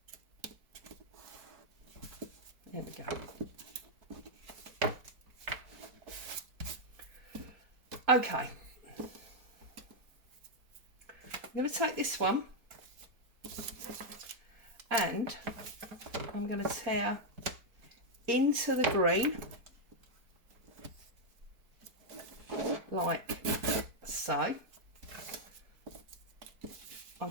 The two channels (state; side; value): late; left; 4.6 ms